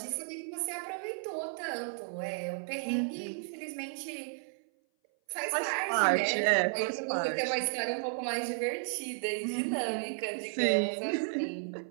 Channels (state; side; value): silent; left; 56 dB below the other